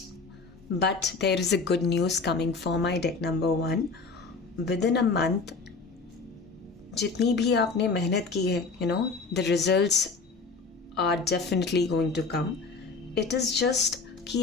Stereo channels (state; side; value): quieter; right; 4.4 dB